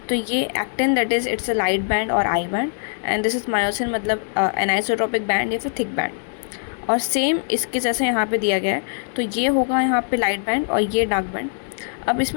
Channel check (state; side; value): silent; right; 63 dB below the other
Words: तो ये actin that is it's a light band और I band, and this is myosin मतलब एनाइसोट्रोपिक बैंड या फिर थिक बैंड। और सेम इसके जैसे यहाँ पे दिया गया है, तो ये होगा यहाँ पे लाइट बैंड और ये डार्क बैंड। अब